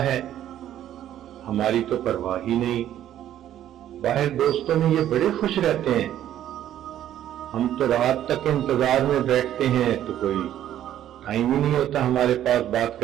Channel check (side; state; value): left; quieter; 11.6 dB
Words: ہے، ہماری تو پرواہ ہی نہیں۔ باہر دوستوں میں یہ بڑے خوش رہتے ہیں، ہم تو رات تک انتظار میں بیٹھتے ہیں تو کوئی ٹائم ہی نہیں ہوتا ہمارے پاس بات